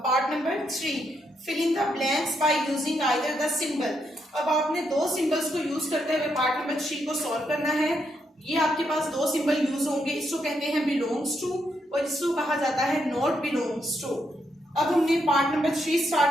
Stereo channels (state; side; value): normal; both; correlation 0.79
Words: part number 3, fill in the blanks by using either the symbol. अब आपने दो सिंबल्स को यूज करते हुए पार्ट नंबर 3 को सॉल्व करना है। ये आपके पास दो सिंबल यूज होंगे, इसको कहते हैं बिलोंग्स टू और इसको कहा जाता है नॉट बिलोंग्स टू। अब हमने पार्ट नंबर 3